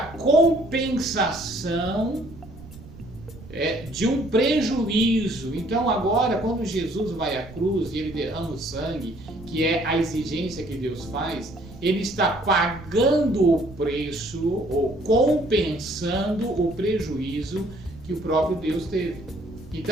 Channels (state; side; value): noise; right; rumble, 17 dB below the sound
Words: de um prejuízo. Então, agora, quando Jesus vai à cruz e ele derrama o sangue, que é a exigência que Deus faz, ele está pagando o preço ou compensando o prejuízo que o próprio Deus teve.